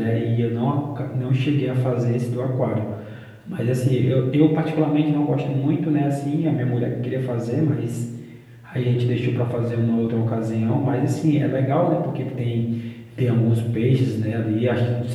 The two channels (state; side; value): identical; both; correlation 1.00